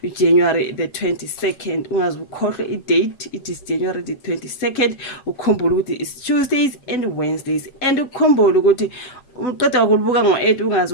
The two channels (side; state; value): right; late; 8.0 ms